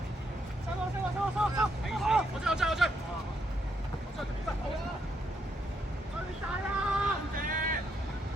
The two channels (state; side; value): normal; both; correlation 0.77